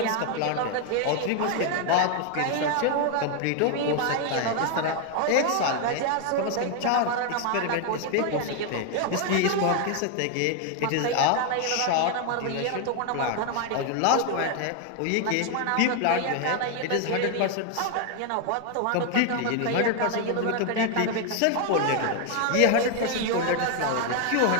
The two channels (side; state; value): both; different; correlation 0.00